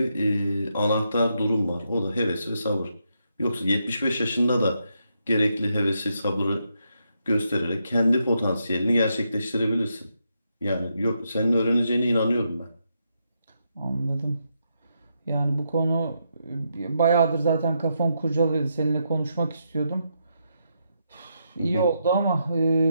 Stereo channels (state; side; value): inverted; both; correlation -0.81